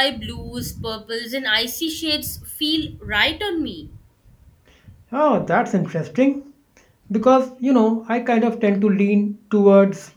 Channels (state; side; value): identical; both; correlation 1.00